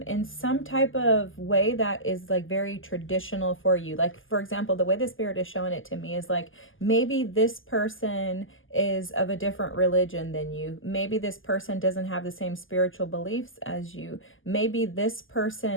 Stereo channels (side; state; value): right; late; 0.58 ms